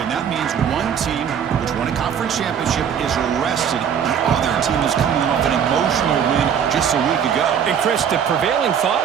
that means one team, which won a conference championship, is rested. The other team is coming off an emotional win just a week ago. And Chris, the prevailing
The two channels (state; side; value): quieter; left; 8.1 dB